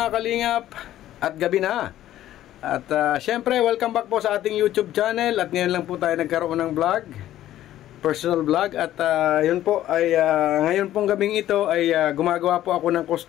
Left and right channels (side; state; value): right; quieter; 13.1 dB